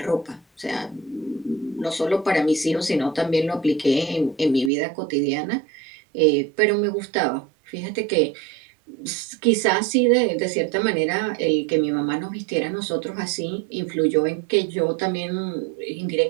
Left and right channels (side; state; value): left; drops out; at 4.7 s